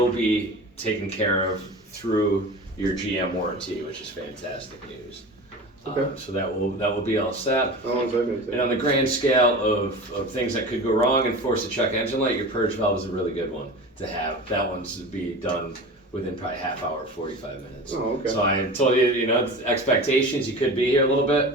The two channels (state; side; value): normal; both; correlation 0.33